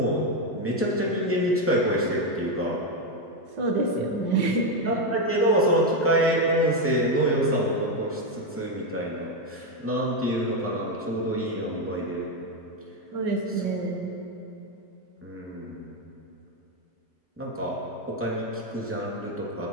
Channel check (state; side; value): normal; both; correlation 0.06